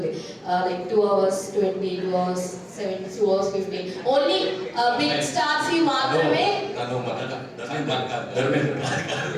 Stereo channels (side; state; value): both; identical; correlation 1.00